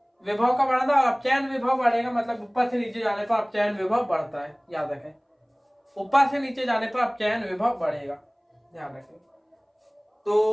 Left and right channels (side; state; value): both; identical; correlation 1.00